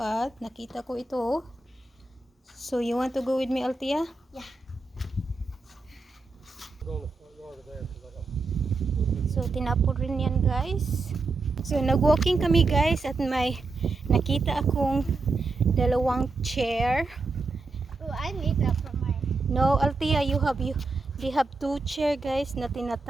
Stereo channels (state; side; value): quieter; left; 3.7 dB